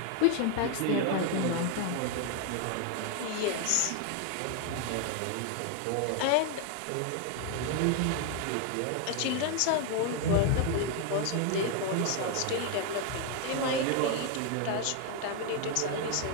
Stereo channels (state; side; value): different; both; correlation 0.01